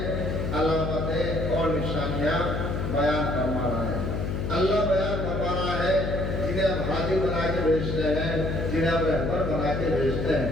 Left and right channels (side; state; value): left; noise; hum, 2 dB below the sound